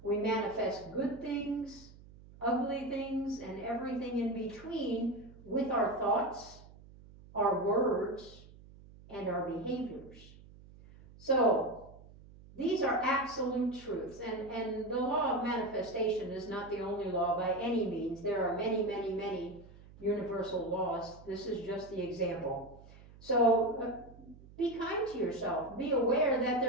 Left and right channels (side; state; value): right; noise; hum, 21 dB below the sound